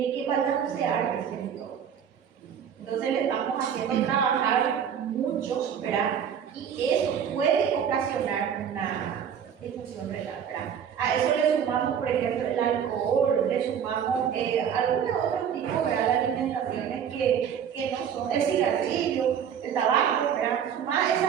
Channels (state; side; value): quieter; left; 8.2 dB